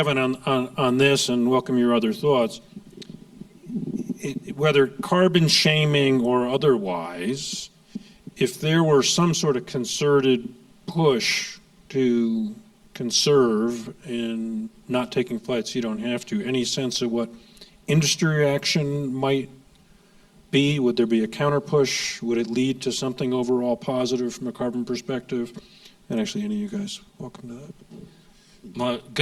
on this and welcome your other thoughts. Whether carbon shaming or otherwise, if there were some sort of concerted push to conserve in not taking flights you don't have to, any sense of what industry reaction might be? Would there be a counter push? Would it lead to something overall positive from a carbon perspective? And actually, any of you guys, welcome to that. Well,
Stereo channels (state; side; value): identical; both; correlation 1.00